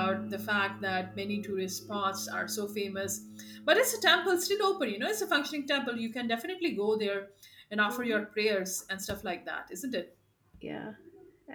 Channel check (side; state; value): both; identical; correlation 1.00